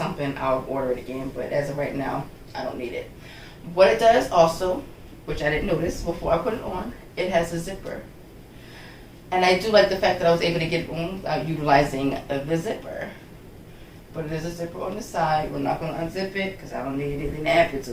I'll order it again. But as of right now, I don't need it. What it does also, which I didn't notice before I put it on, it has a zipper. And I do like the fact that I was able to get it on without utilizing the zipper. But it is a zipper on the side. We're not going to unzip it because I don't need anything to add to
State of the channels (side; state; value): both; identical; correlation 1.00